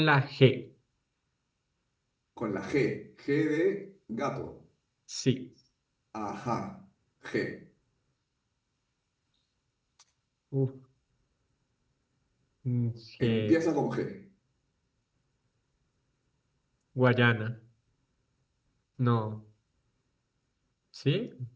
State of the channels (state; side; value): identical; both; correlation 1.00